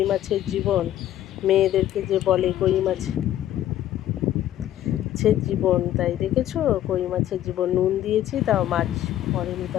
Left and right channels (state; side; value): quieter; right; 12.5 dB